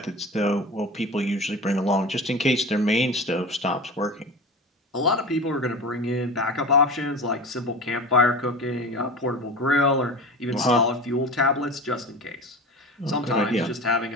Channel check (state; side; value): normal; both; correlation 0.32